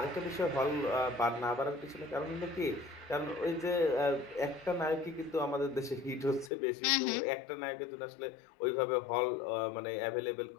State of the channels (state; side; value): drops out; right; at 6.5 s